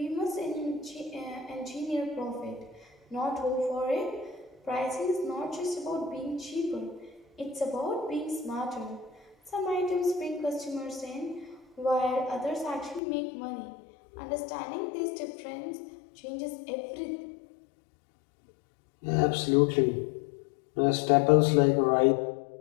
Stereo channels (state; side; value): drops out; right; at 13.0 s